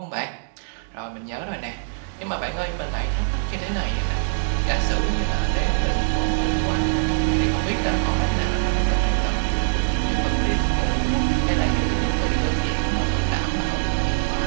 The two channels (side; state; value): left; silent; digital silence